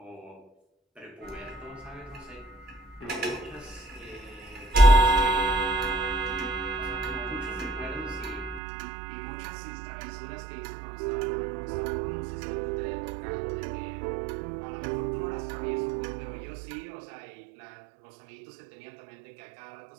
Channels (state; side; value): drops out; left; at 8.6 s